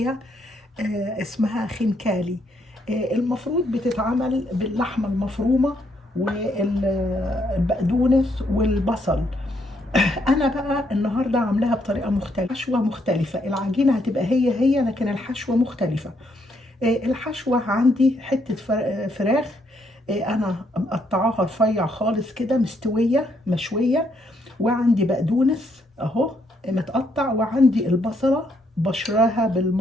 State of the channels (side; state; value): both; normal; correlation 0.73